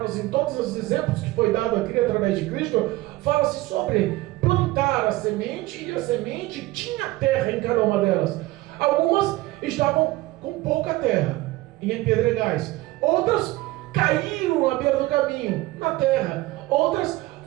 em todos os exemplos que foi dado aqui através de Cristo, fala-se sobre plantar a semente, e a semente tinha terra em cada uma delas. Algumas estavam com pouca terra, em pedregais. Outras caíram à beira do caminho, na terra. Outras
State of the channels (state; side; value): quieter; left; 18.7 dB